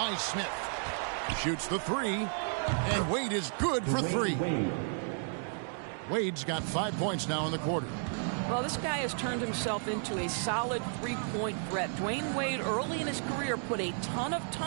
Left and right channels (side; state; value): left; silent; 56 dB below the other